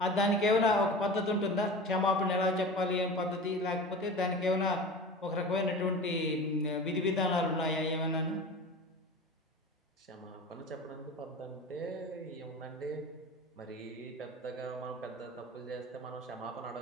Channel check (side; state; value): both; normal; correlation 0.34